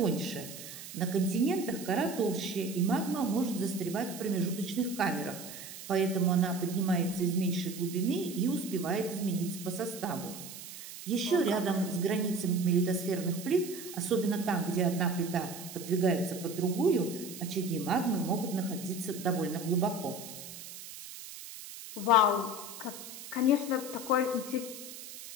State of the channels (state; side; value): noise; right; hiss, 12 dB below the sound